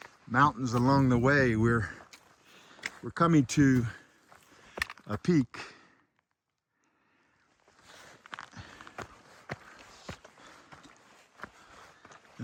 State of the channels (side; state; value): both; identical; correlation 1.00